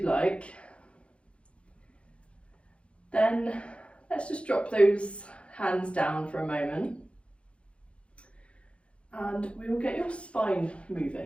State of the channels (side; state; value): right; late; 0.060 ms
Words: like. Then let's just drop those hands down for a moment. And we will get your spine